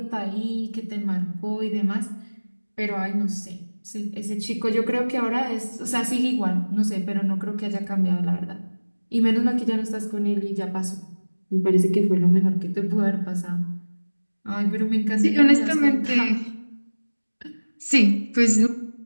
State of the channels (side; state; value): both; inverted; correlation -1.00